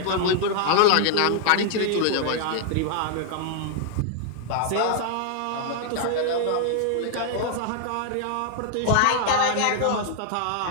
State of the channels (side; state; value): both; different; correlation 0.00